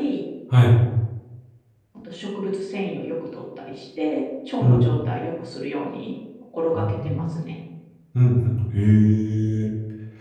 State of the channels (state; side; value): identical; both; correlation 1.00